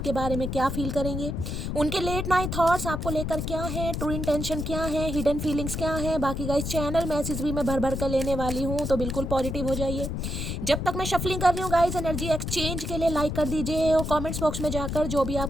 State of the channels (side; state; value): left; noise; rumble, 3 dB below the sound